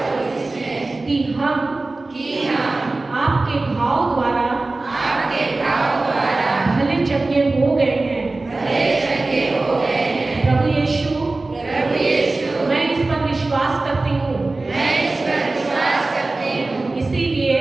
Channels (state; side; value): quieter; left; 3.2 dB